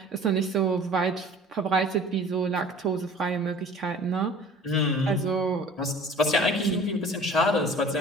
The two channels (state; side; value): normal; both; correlation 0.46